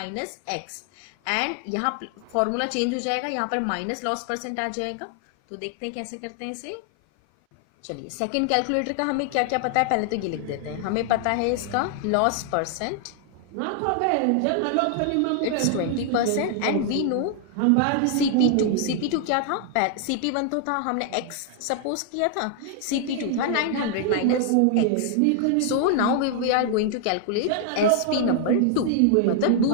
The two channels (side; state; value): both; different; correlation 0.00